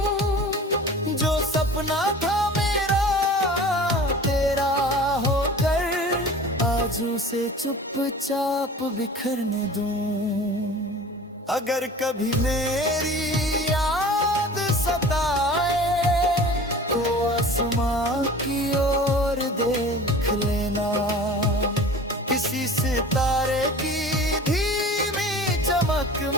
जो सपना था मेरा तेरा होकर आज उसे चुपचाप बिखरने दूं। अगर कभी मेरी याद सताए तो आसमां की ओर देख लेना। किसी सितारे की धीमी चमक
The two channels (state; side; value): normal; both; correlation 0.41